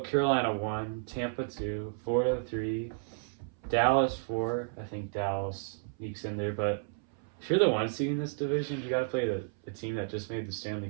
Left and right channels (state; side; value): silent; left; 56 dB below the other